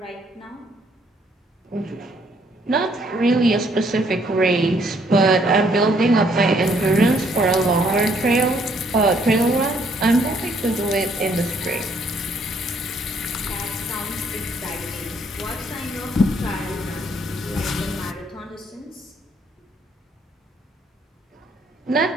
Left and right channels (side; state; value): both; normal; correlation 0.67